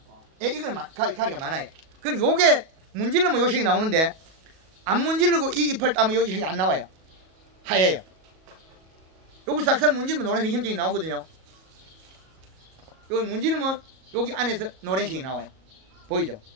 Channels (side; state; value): left; late; 37 ms